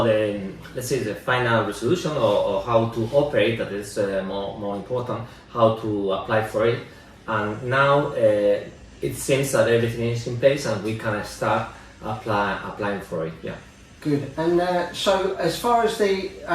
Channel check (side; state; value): both; identical; correlation 1.00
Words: the, let's say, the final resolution or how to operate. That is more important, how to apply for it. And now it seems that everything is in place and we can start applying for it. Yeah. Good. And so as far as the